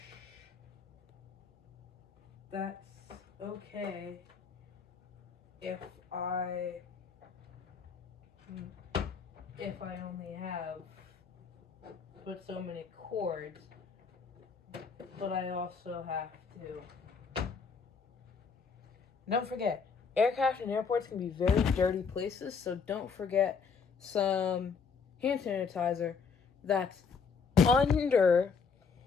that's okay if I only have but so many cords, but I also have to. Don't forget, aircraft and airports can be very dirty places, so don't forget some hand sanitizer that's under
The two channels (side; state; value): right; quieter; 5.6 dB